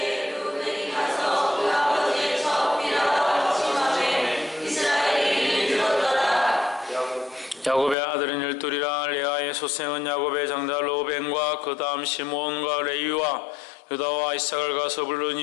야곱의 아들은 12이라. 레아의 소생은 야곱의 장자 로벤과 그 다음 시므온과 레위와 유다와 이삭을 가서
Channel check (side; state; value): right; drops out; at 8.0 s